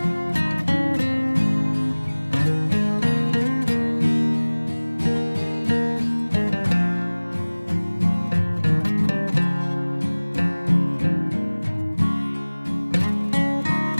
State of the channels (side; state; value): both; inverted; correlation -1.00